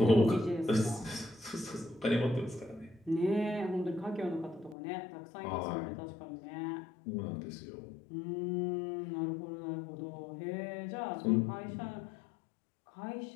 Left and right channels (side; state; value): right; drops out; at 4.8 s